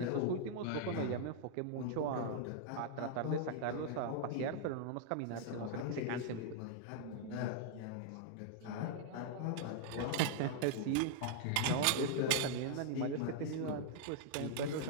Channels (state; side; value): different; both; correlation -0.01